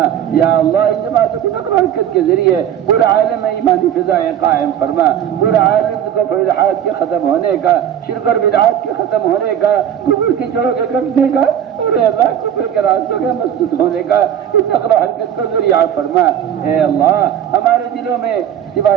یا اللہ ان جماعتوں کی نقل و حرکت کے ذریعے پورے عالم میں ایمانی فضائیں قائم فرما، پورے عالم کو الحاد کے ختم ہونے کا، شرک اور بدعات کے ختم ہونے کا، کفر کی جڑوں کے کٹنے کا اور اے اللہ کفر کے راستوں کے مسدود ہونے کا اس نقل و حرکت کو ذریعہ فرما۔ اے اللہ ہمارے دلوں میں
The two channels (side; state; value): left; quieter; 9.8 dB